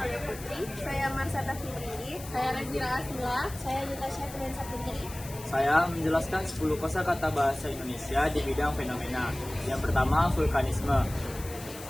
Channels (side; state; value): left; noise; hiss, 15 dB below the sound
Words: Putri. Saya Marsata Fitri. Saya Razira Asmila. Saya Juta Syafrin Saputri. Saya menjelaskan 10 kosakata bahasa Indonesia di bidang fenomena. Yang pertama, vulkanisme